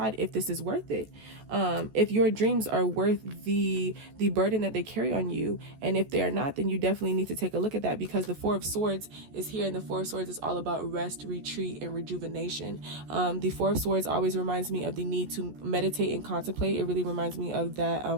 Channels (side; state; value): left; late; 14 ms